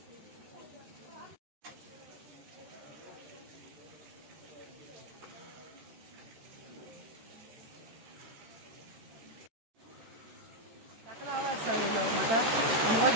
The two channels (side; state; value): left; late; 13 ms